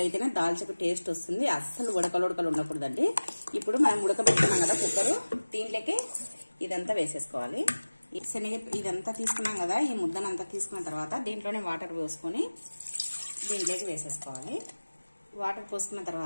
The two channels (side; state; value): both; inverted; correlation -1.00